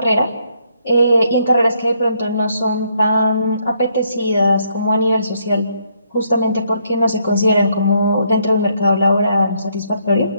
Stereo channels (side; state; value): both; inverted; correlation -0.72